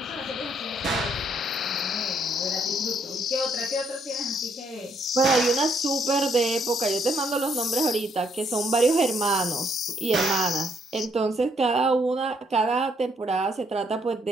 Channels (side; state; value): both; normal; correlation 0.70